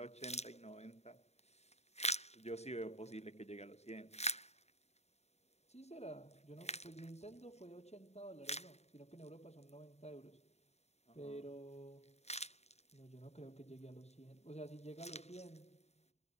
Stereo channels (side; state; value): right; late; 0.31 ms